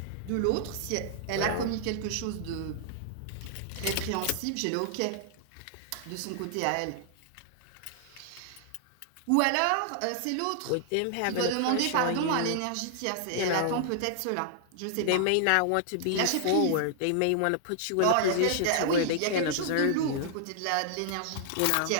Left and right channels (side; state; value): both; different; correlation -0.01